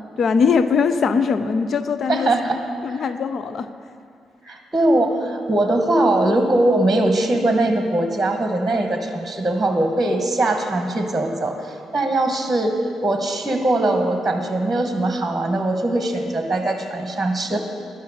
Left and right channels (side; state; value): both; normal; correlation 0.82